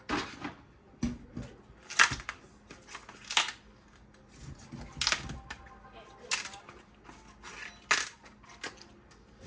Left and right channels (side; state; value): both; identical; correlation 1.00